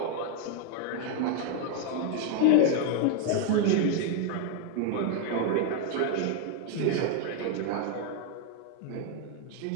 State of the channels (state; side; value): different; both; correlation 0.00